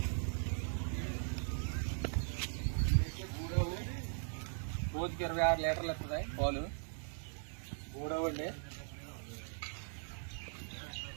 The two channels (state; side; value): silent; left; 51 dB below the other